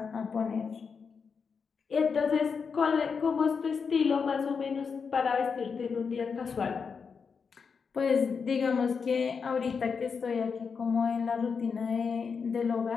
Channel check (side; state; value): right; quieter; 5.7 dB